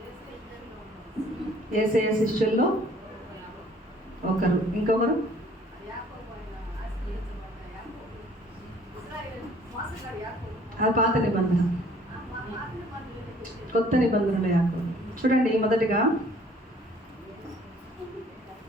యేసయ్య శిష్యుల్లో ఒకరు. ఇంకొకరు? అది పాత నిబంధన. కొత్త నిబంధనలో యాకోబు. చూడండి, మొదటిగా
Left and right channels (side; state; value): both; normal; correlation 0.56